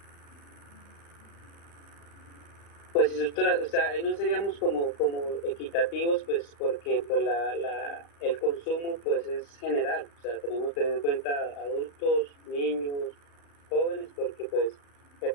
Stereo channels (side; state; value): right; late; 35 ms